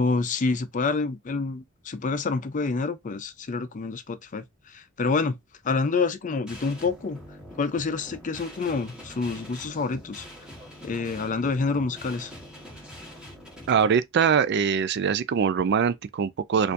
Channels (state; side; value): normal; both; correlation 0.20